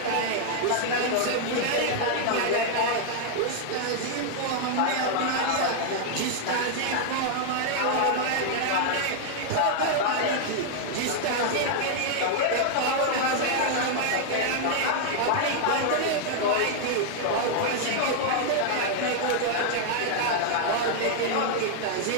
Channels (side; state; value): both; different; correlation 0.00